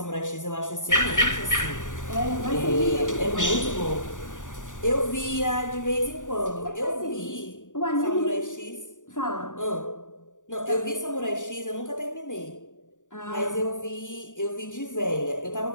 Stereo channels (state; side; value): late; right; 0.87 ms